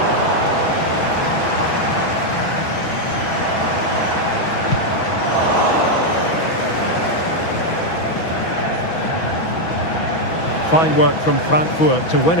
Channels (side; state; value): right; late; 6.1 ms